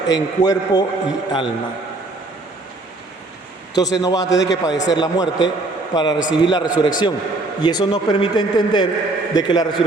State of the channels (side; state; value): left; quieter; 3.0 dB